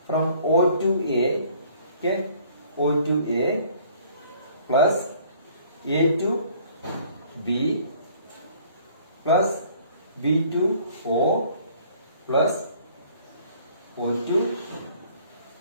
from O to A, okay, O to A plus A to B plus B to O plus O to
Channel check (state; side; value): inverted; both; correlation -0.57